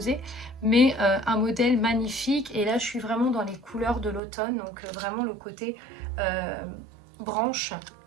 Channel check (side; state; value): left; drops out; at 4.2 s